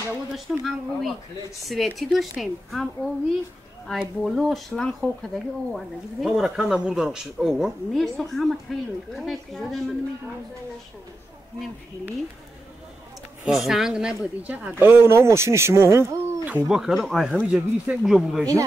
داشتم هم اوی سویتی داشتیم هم اوی ای بولو شلنگ خو کدگی او وردگی دیگه همه را کندم بردن او ها؟ نه سو همه تایلوی کدای کجا دای من نمیدونم نم خیلی سنگ نبود اینجا اگر او نه ماشین شما هم؟ توبه کردم ای همه جا گریسته اینجا بوده اینجا؟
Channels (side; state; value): both; normal; correlation 0.88